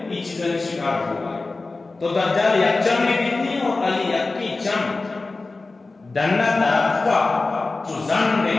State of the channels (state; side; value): quieter; right; 3.5 dB